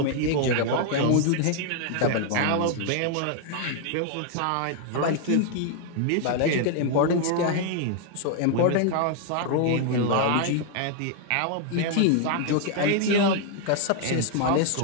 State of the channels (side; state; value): both; different; correlation 0.00